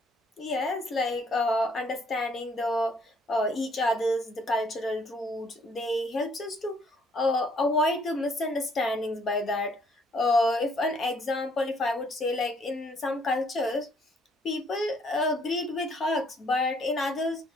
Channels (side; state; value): both; normal; correlation 0.65